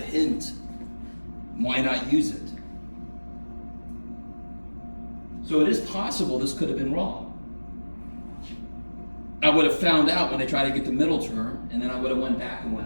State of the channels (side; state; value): both; inverted; correlation -1.00